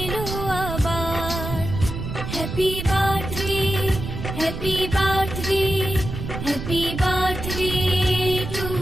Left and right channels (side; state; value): right; noise; rumble, 6 dB below the sound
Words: আবার। Happy birthday, happy birthday, happy birthday to